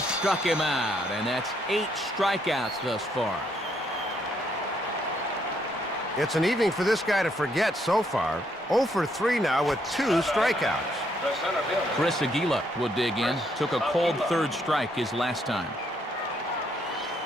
him out, and that's 8 strikeouts thus far. It's an evening for this guy to forget so far. 0 for 3 now with 2 strikeouts. Chris Aguila will dig in. Took a cold third strike his last time.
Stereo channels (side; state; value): both; normal; correlation 0.72